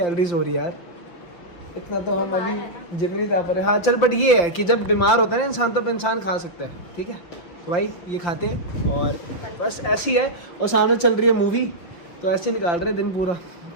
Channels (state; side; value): late; right; 5.8 ms